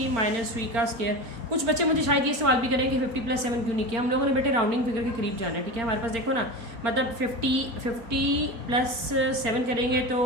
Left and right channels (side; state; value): left; late; 4.4 ms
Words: माइनस 3 का स्केयर। कुछ बच्चे मुझे शायद ये सवाल भी करेंगे 50 प्लस 7 क्यों नहीं किया, हम लोगों ने बेटे राउंडिंग फिगर के करीब जाना है। ठीक है, हमारे पास देखो ना, मतलब 50 प्लस 7 करेंगे